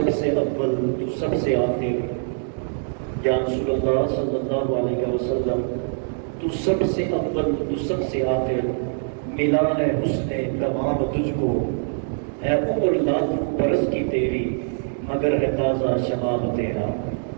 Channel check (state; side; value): silent; left; digital silence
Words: سے اول تو سب سے آخر، یا رسول اللہ صلی اللہ علیہ وسلم تو سب سے اول تو سب سے آخر، ملا ہے حسن تمام تجھ کو، ہے عمر لاکھوں برس کی تیری مگر ہے تازہ شباب تیرا۔